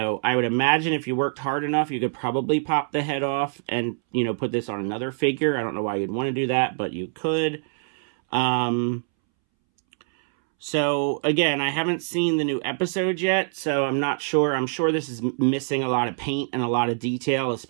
I would imagine if you worked hard enough, you could probably pop the head off and, you know, put this on another figure. I don't know why you'd want to do that, but you could. So, again, I haven't seen the new episode yet, so I'm not sure. I'm sure this is missing a lot of paint and a lot of detail,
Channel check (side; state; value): left; silent; 62 dB below the other